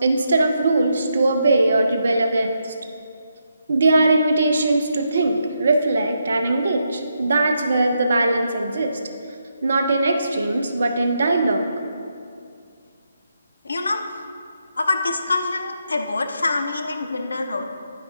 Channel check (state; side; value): inverted; both; correlation -0.81